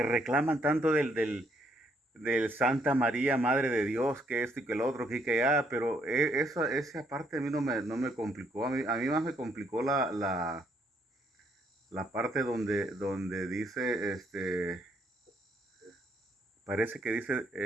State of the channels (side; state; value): both; normal; correlation 0.70